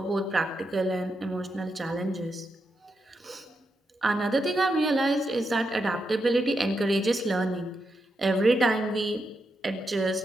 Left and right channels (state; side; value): normal; both; correlation 0.84